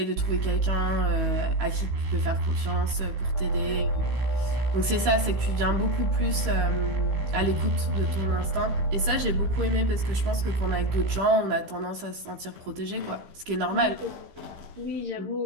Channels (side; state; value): left; late; 15 ms